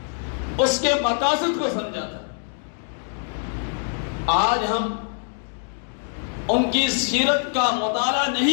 اس کے مقاصد کو سمجھا تھا. آج ہم ان کی سیرت کا مطالعہ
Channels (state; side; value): silent; right; 62 dB below the other